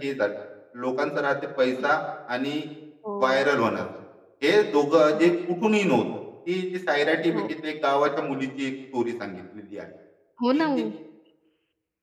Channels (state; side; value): identical; both; correlation 1.00